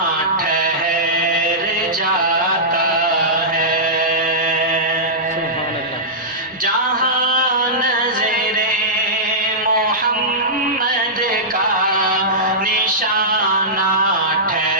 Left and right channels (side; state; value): both; normal; correlation -0.14